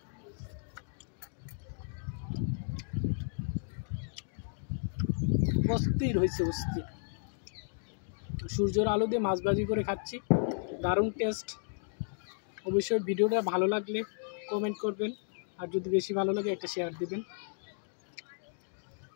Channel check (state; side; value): silent; right; digital silence